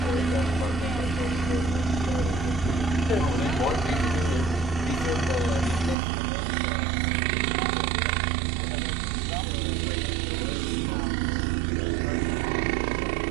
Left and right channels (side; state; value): left; drops out; at 6.0 s